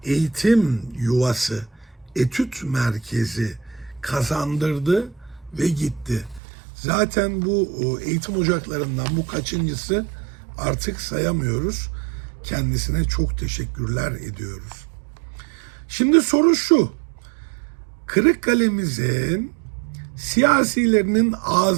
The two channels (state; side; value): drops out; left; at 6.4 s